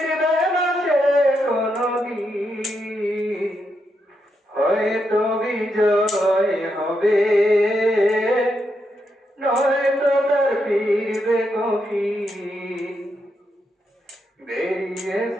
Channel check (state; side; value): normal; both; correlation 0.82